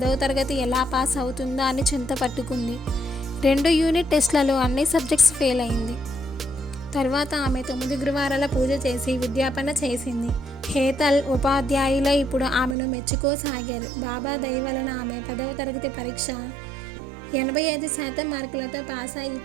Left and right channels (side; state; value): left; drops out; at 12.8 s